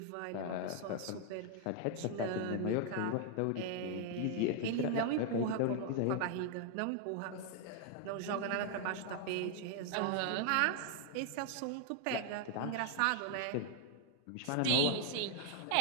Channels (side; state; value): both; different; correlation 0.00